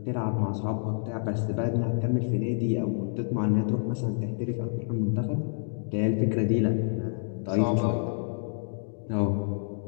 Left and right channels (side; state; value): right; silent; digital silence